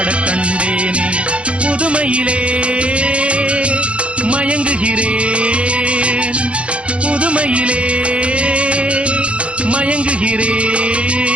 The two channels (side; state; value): left; late; 0.060 ms